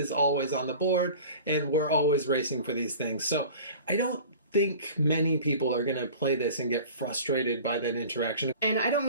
always on the board and we're always racing for these things. So I don't think many people are going to play this and get frustrated by that interaction. And I don't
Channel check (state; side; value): inverted; both; correlation -0.41